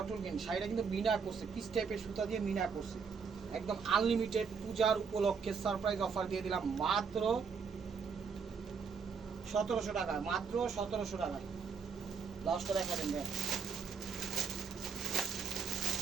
গ্রিন। শাড়িটা কিন্তু মিনা করছে, পিস টাইপের সুতা দিয়ে মিনা করছে। একদম আনলিমিটেড পূজার উপলক্ষে সারপ্রাইজ অফার দিয়ে দিলাম মাত্র 1700 টাকা, মাত্র 1700 টাকায়। ব্লাউজটা দেখাবেন ভাই।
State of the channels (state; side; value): quieter; left; 5.9 dB